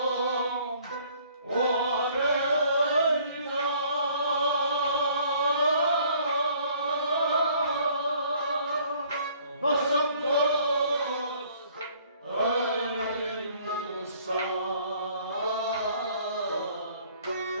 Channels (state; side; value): inverted; both; correlation -0.58